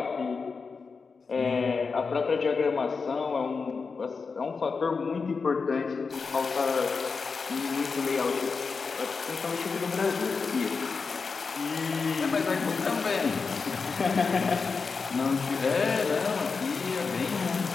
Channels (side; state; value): right; quieter; 4.9 dB